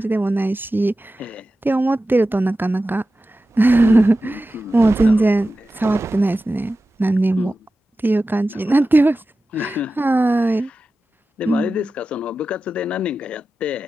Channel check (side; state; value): both; normal; correlation 0.94